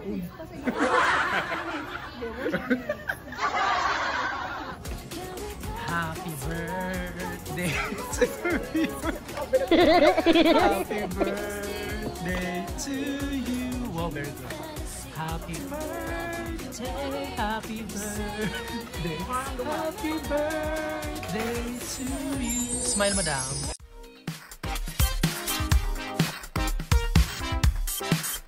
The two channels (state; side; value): identical; both; correlation 1.00